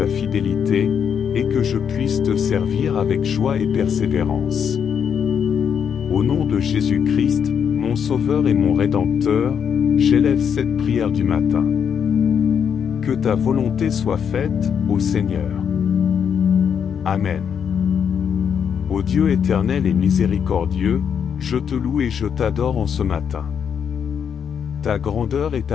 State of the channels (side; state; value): right; quieter; 7.6 dB